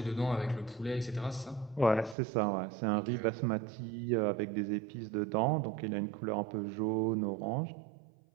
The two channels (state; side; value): drops out; left; at 2.1 s